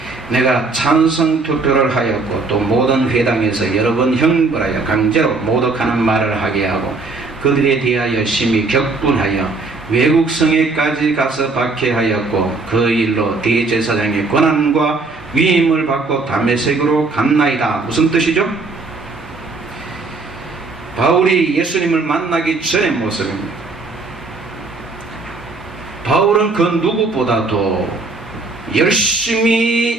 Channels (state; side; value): quieter; left; 3.7 dB